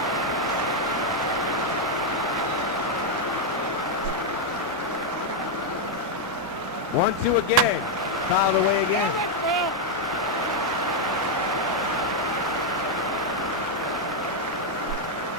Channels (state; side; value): normal; both; correlation 0.00